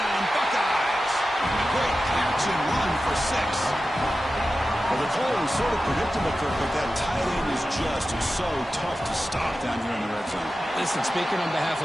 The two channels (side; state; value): both; normal; correlation 0.93